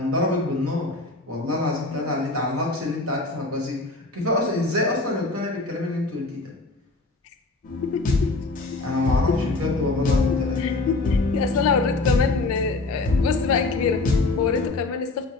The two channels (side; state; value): right; quieter; 3.2 dB